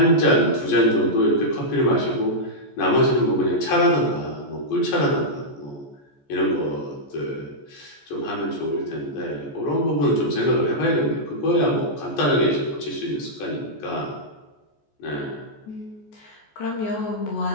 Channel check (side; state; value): right; late; 14 ms